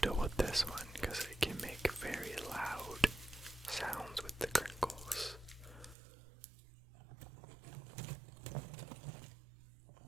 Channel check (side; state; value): left; drops out; at 6.0 s